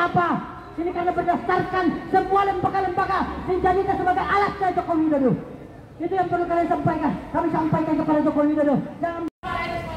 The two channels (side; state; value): both; identical; correlation 1.00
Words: apa? Ini karena berdasarkan semua lembaga-lembaga dijadikan sebagai alat dari Jokowi Widodo. Itu yang perlu kalian sampaikan. Kami sampaikan kepada Jokowi Widodo. Jangan